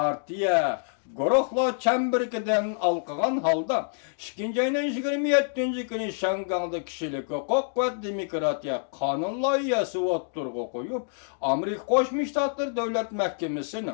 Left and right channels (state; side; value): silent; right; digital silence